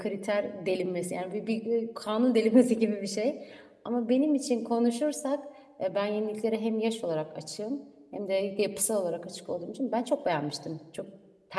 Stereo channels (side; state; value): both; identical; correlation 1.00